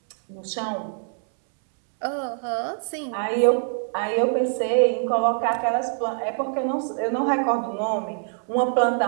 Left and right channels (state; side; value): silent; left; 62 dB below the other